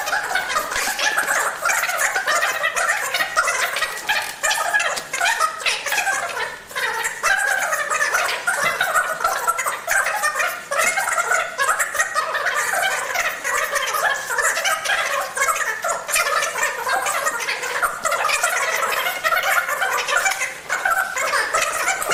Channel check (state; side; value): identical; both; correlation 1.00